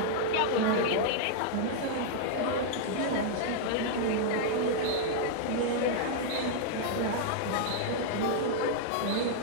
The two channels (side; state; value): both; different; correlation -0.01